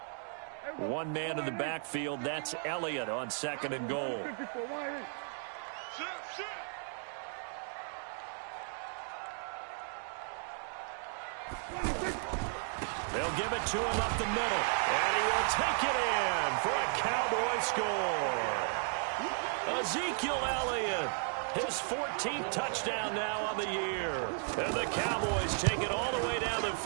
One man in the backfield, that's Elliott on second and goal. They'll give it to him up the middle, and he will take it in for a Cowboy score. Ezekiel Elliott, his 14th touchdown now on the year. And the Cowboys take it all the way down the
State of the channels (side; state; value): left; silent; 55 dB below the other